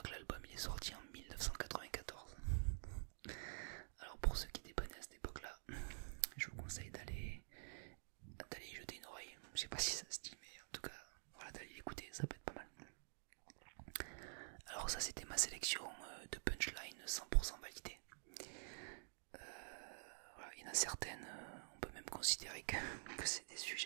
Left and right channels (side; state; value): left; silent; digital silence